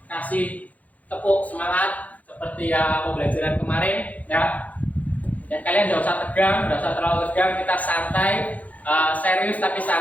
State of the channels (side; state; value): right; late; 0.074 ms